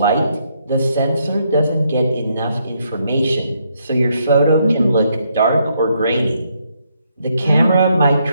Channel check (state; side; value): inverted; both; correlation -0.75